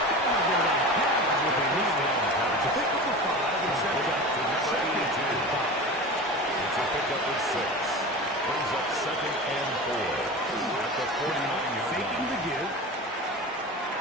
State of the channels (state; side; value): normal; both; correlation 0.31